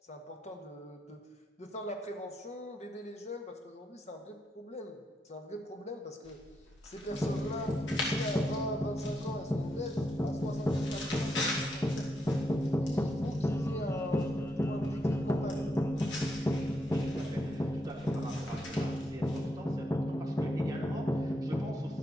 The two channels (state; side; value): normal; both; correlation 0.81